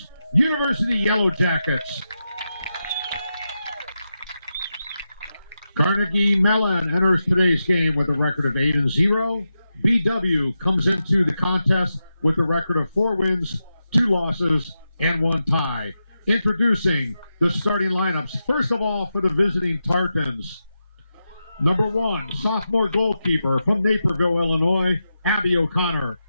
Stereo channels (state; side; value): inverted; both; correlation -0.89